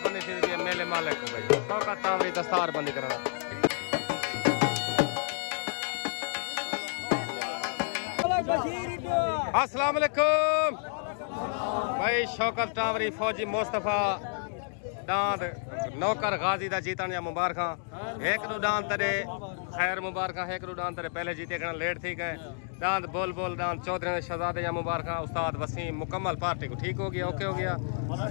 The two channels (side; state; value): right; silent; digital silence